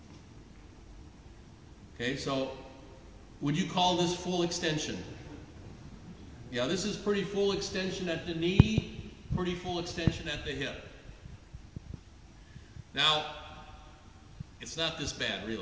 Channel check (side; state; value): both; identical; correlation 1.00